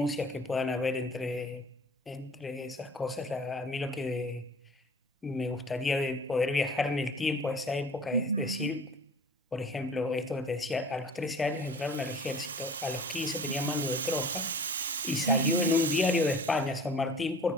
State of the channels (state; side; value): normal; both; correlation 0.44